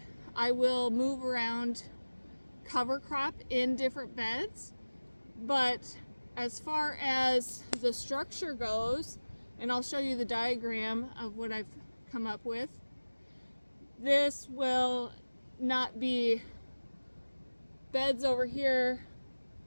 I will move around cover crop in different beds, but as far as the structure goes, and I'll show you the diagram of what I've come up with, this will not be beds over here,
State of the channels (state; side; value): inverted; both; correlation -1.00